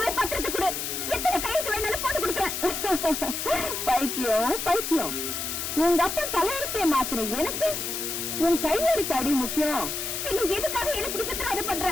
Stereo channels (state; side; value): noise; left; hiss, 3 dB below the sound